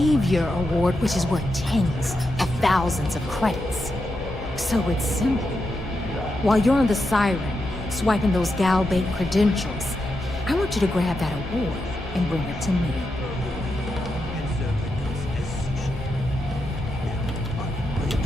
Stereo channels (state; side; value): normal; both; correlation 0.86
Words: Award, which is worth tens of thousands of credits. So it's simple. While you're on the Siren, swiping those Galbait credentials, I want you to grab that award and bring it to me.